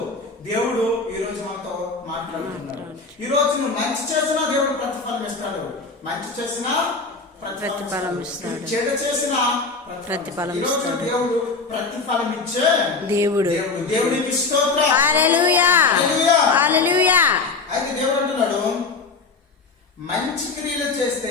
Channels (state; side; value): quieter; right; 4.2 dB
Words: దేవుడు ఈ రోజు మనతో మాట్లాడుతున్నాడు. ఈ రోజు నువ్వు మంచి చేసినా దేవుడు ప్రతిఫలం ఇస్తాడు, మంచి చేసినా ప్రతిఫలం ఇస్తాడు, చెడు చేసినా ప్రతిఫలం ఇస్తాడు. దేవుడు ప్రతిఫలం ఇచ్చే దేవుడు. దేవుడికి స్తోత్రం. హల్లెలూయా హల్లెలూయా. అయితే దేవుడు అంటున్నాడు, మంచి క్రియలు